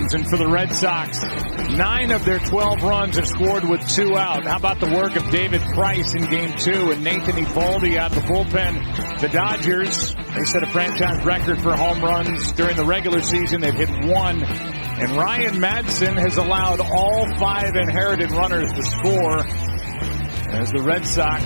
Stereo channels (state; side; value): inverted; both; correlation -1.00